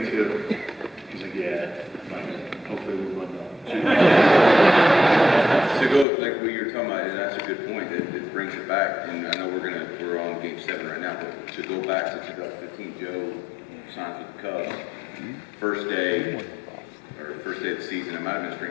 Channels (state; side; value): drops out; right; at 6.1 s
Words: too. He's like, yeah. I'm like, hopefully we win though. To go like what you're talking about, and that's a good point. It brings it back, and I know we're on Game 7 right now, but to go back to 2015, Joe signs with the Cubs. First day of the season. It might have been